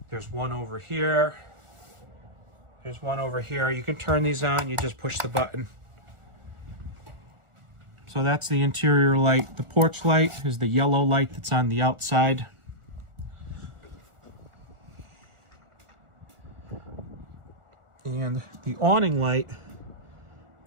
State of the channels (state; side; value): late; left; 1.4 ms